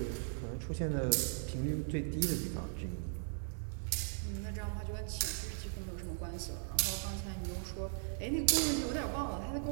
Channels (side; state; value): left; silent; digital silence